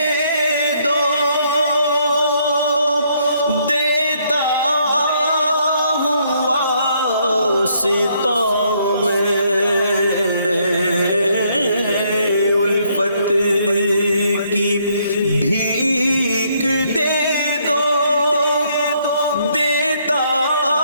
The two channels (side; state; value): both; inverted; correlation -0.70